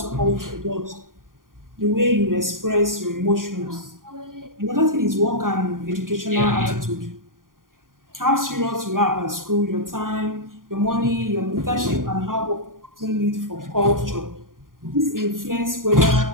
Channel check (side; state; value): left; late; 0.90 ms